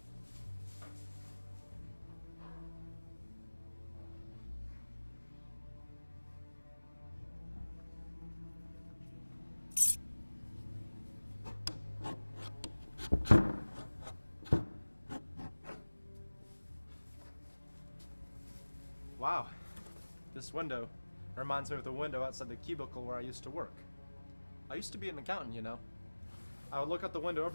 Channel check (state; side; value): inverted; both; correlation -1.00